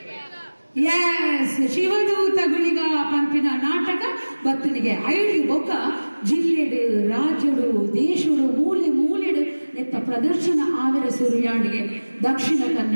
ಎಸ್ ಶಿವದೂತ ಗುಳಿಗ ಪಂಪಿನ ನಾಟಕ ಬತ್ತನಿಗೆ ಐದು ಬೊಕ್ಕ ಜಿಲ್ಲೆಡು ರಾಜ್ಯಡು ದೇಶಡು ಮೂಲೆ ಮೂಲೆಡು ನೆತ್ತ ಪ್ರದರ್ಶನ ಆವರ ಸುರಿಯಾಂಡಿಗೆ ದಕ್ಷಿಣ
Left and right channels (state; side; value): inverted; both; correlation -1.00